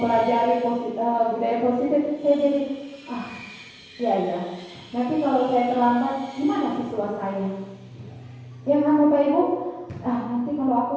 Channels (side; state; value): both; identical; correlation 1.00